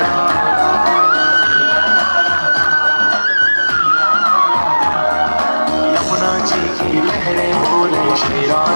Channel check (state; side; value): inverted; both; correlation -1.00